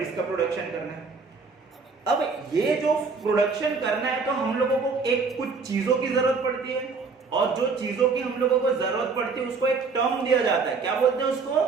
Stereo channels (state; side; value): quieter; left; 4.7 dB